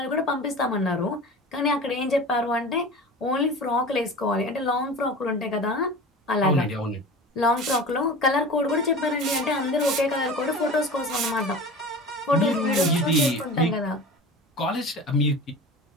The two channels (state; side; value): normal; both; correlation 0.35